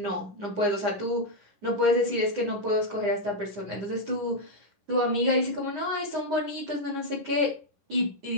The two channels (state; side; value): late; left; 10 ms